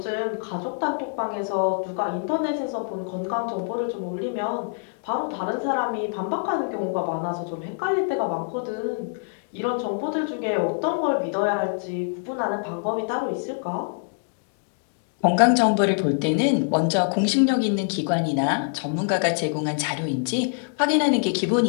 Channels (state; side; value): silent; right; digital silence